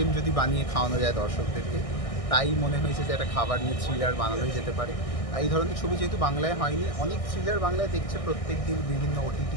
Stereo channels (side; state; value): right; late; 1.6 ms